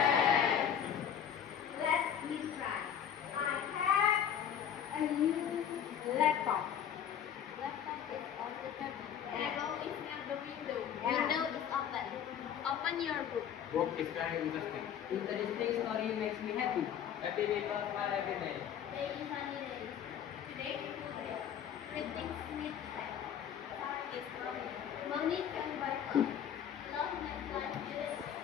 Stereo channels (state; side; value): quieter; right; 9.0 dB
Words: Let's me try. I have a new laptop. Laptop is on the table. Arrow Arrow is near the window. Yeah. Window is open. Open your book. Book is very interesting. Interesting story makes me happy. Happy because my happy day. Today is sunny day. Today is good day. Greeting Smith said. Time is money. Money can buy love. Love makes life beautiful.